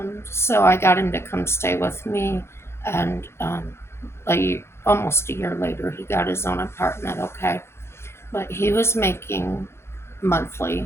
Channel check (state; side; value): late; right; 0.12 ms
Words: So I got him to come stay with me, and almost a year later, he got his own apartment, okay? But he was making